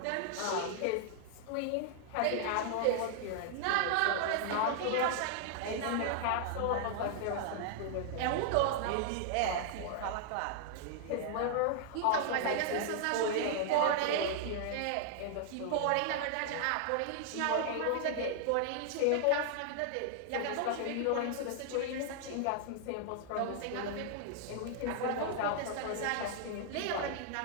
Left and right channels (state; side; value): different; both; correlation -0.01